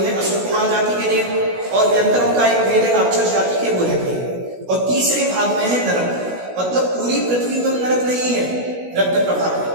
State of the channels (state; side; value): late; left; 16 ms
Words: असुर कुमार जाति के देव, और व्यंतरों का एक भेद है राक्षस जाति के, वो रहते हैं। और तीसरे भाग में है नरक, मतलब पूरी पृथ्वी में नरक नहीं है रत्न प्रभा के,